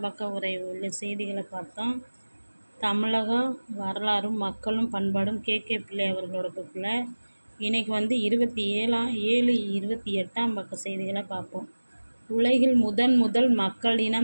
பக்க உரை உள்ள செய்திகளை பார்த்தோம். தமிழக வரலாறும் மக்களும் பண்பாடும் கே பிள்ளை அவர்களோட புக்கில் இன்றைக்கி 28ஆம் பக்க செய்திகளை பார்ப்போம். உலகில் முதல் மக்கள்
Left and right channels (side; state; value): both; inverted; correlation -1.00